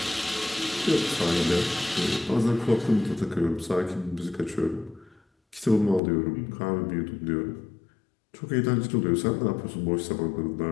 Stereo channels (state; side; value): drops out; right; at 6.0 s